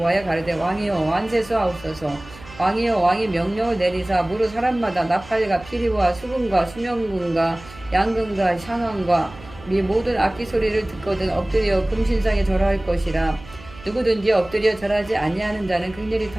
가르되 왕이여 완세수하옵소서. 왕이여 왕이 명령을 내리사 무릇 사람마다 나팔과 피리와 수금과 수명금과 양금과 상한과 및 모든 악기 소리를 듣거든 엎드려 금신상에 절할 것이라. 누구든지 엎드려 절하지 아니하는 자는 극렬히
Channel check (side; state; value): right; noise; hum, 19 dB below the sound